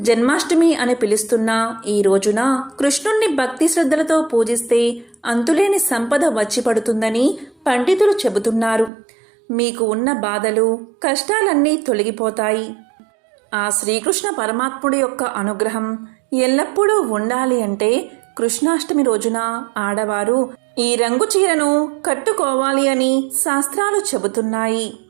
జన్మాష్టమి అని పిలుస్తున్న ఈ రోజున కృష్ణుణ్ణి భక్తి శ్రద్ధలతో పూజిస్తే అంతులేని సంపద వచ్చి పడుతుందని పండితులు చెబుతున్నారు. మీకు ఉన్న బాధలు, కష్టాలన్నీ తొలగిపోతాయి. ఆ శ్రీకృష్ణ పరమాత్ముడి యొక్క అనుగ్రహం ఎల్లప్పుడూ ఉండాలి అంటే కృష్ణాష్టమి రోజున ఆడవారు ఈ రంగు చీరను కట్టుకోవాలి అని శాస్త్రాలు చెబుతున్నాయి.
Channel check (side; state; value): left; drops out; at 8.9 s